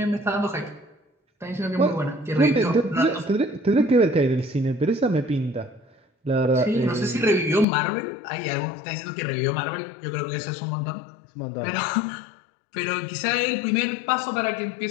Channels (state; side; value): drops out; right; at 7.7 s